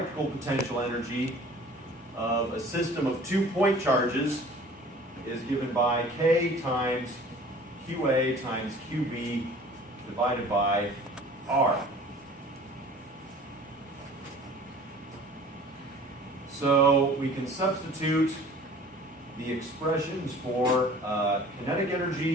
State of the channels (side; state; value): both; normal; correlation 0.47